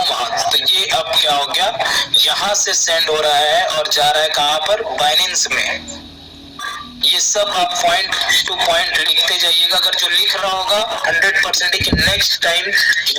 वहां। तो ये अब क्या हो गया, यहाँ से सेंड हो रहा है और जा रहा है कहाँ पर, बाइनेंस में। ये सब आप पॉइंट टू पॉइंट लिखते जाइएगा। अगर जो लिख रहा होगा 100% कि नेक्स्ट टाइम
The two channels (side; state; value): both; identical; correlation 1.00